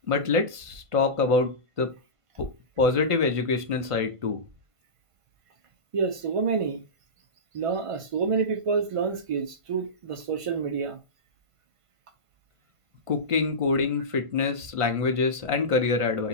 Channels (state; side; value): late; left; 1.5 ms